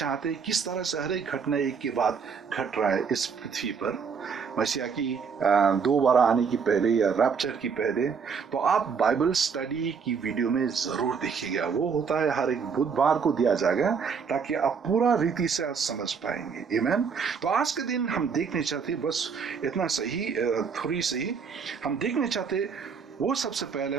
हैं किस तरह से हर एक घटना एक के बाद घट रहा है इस पृथ्वी पर मसीहा की दोबारा आने की पहले या रैप्चर की पहले, तो आप बाइबल स्टडी की वीडियो में जरूर देखिएगा। वो होता है हर एक बुधवार को दिया जाएगा ताकि आप पूरा रीति से आज समझ पाएंगे। आमीन। तो आज के दिन हम देखने चाहते बस इतना सही, थोड़ी सही हम देखने चाहते वो सबसे पहले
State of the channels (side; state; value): left; quieter; 6.0 dB